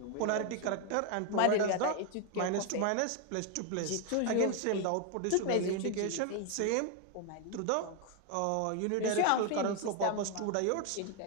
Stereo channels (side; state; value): both; different; correlation 0.01